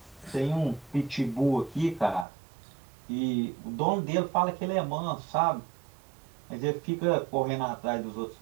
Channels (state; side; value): drops out; left; at 2.2 s